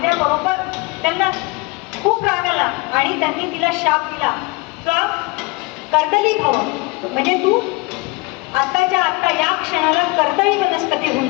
त्यांना खूप राग आला आणि त्यांनी तिला शाप दिला का कर्दली भव, म्हणजे तू आत्ताच्या आत्ता या क्षणाला कर्दळी वनस्पती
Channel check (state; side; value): quieter; right; 26.1 dB